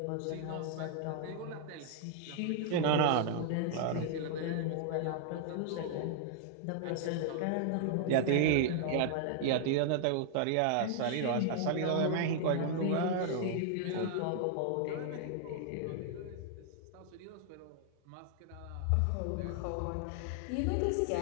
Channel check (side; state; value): both; different; correlation -0.01